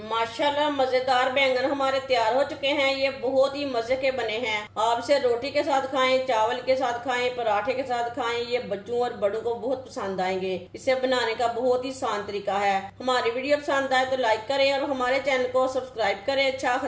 मजेदार बैंगन हमारे तैयार हो चुके हैं। ये बहुत ही मजे के बने हैं। आप इसे रोटी के साथ खाएं, चावल के साथ खाएं, पराठे के साथ खाएं। ये बच्चों और बड़ों को बहुत पसंद आएंगे। इसे बनाने का बहुत ही आसान तरीका है। हमारी वीडियो पसंद आए तो लाइक करें और हमारे चैनल को सब्सक्राइब करें। अच्छा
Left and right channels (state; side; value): identical; both; correlation 1.00